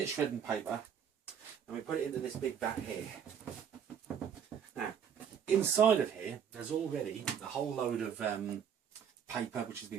shredding paper and we put it into this big vat here. Now, inside of here, there's already a whole load of paper which has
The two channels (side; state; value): left; quieter; 8.0 dB